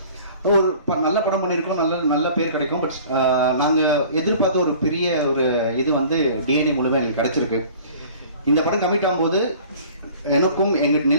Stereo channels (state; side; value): inverted; both; correlation -0.47